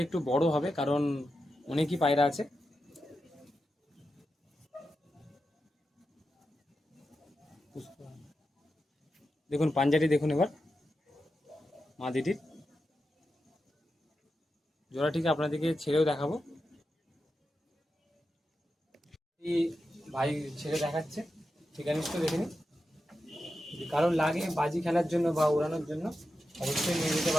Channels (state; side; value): normal; both; correlation 0.89